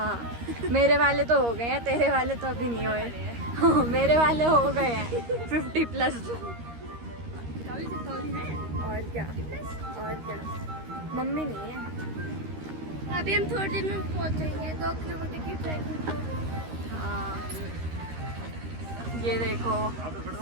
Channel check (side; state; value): left; late; 13 ms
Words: मेरे वाले तो हो गए हैं, तेरे वाले तो अभी नहीं हुए। हाँ, मेरे वाले हो गए हैं 50+। और क्या मम्मी नहीं है। अभी हम थोड़ी देर में पहुंचेंगे 2 किलोमीटर की ट्रैकिंग। हाँ, ये देखो